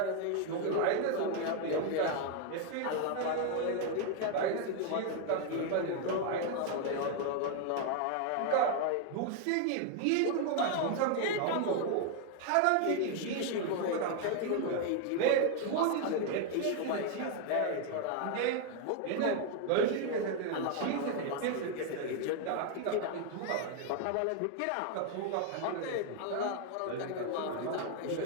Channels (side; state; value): both; different; correlation 0.01